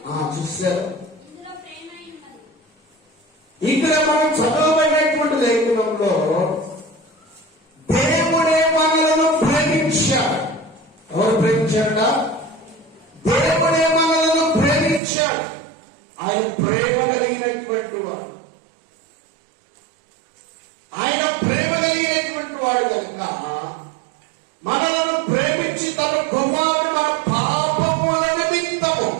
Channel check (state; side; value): drops out; left; at 15.0 s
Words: చూశారు. ఇక్కడ మనం చదవబడినటువంటి లేఖనంలో దేవుడే మనలను ప్రేమించాడు. ఎవరు ప్రేమించాడ? దేవుడే మనలను ప్రేమించాడు. ఆయన ప్రేమ కలిగినటువంటి వాడు, ఆయన ప్రేమ కలిగినటువంటి వాడు కనుక మనలను ప్రేమించి తన కుమారుడు మన